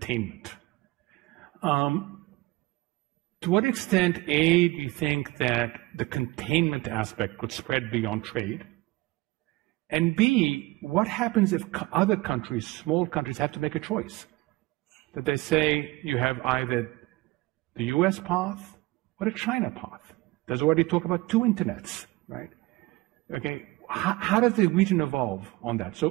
To what extent, A, do you think that the containment aspect could spread beyond trade? And B, what happens if other countries, small countries, have to make a choice? That they say you have either the US path or the China path. There's already talk about 2 internets, right? Okay, how does the region evolve on that?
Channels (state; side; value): quieter; left; 21.0 dB